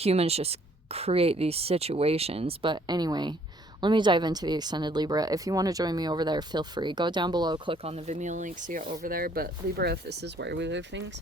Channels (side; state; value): both; normal; correlation 0.63